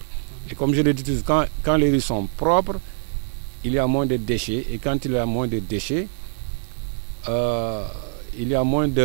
Et comme je l'ai dit, quand les rues sont propres, il y a moins de déchets. Et quand il y a moins de déchets, il y a moins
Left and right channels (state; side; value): silent; left; 62 dB below the other